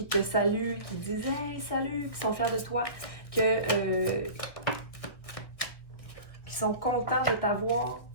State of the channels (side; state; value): right; late; 1.8 ms